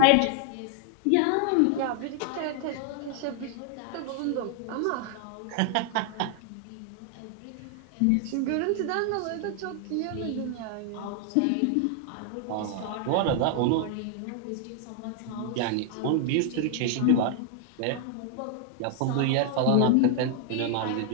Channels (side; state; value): both; different; correlation 0.00